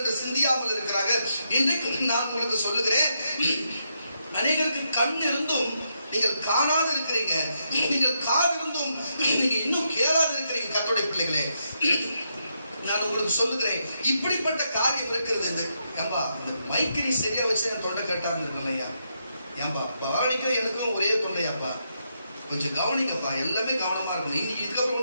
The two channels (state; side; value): inverted; both; correlation -0.81